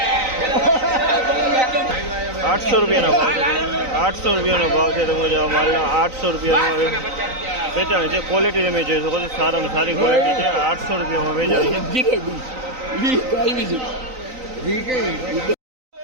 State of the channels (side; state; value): left; late; 3.9 ms